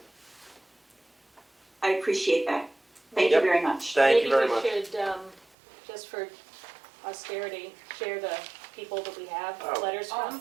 I appreciate that. Thank you very much. Thank you very much. Maybe we should, just for austerity, share the people that we have Oh. letters from.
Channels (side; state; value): left; drops out; at 5.5 s